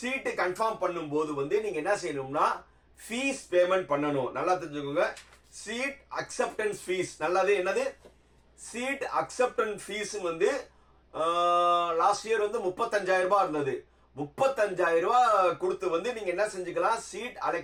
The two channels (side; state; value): both; identical; correlation 1.00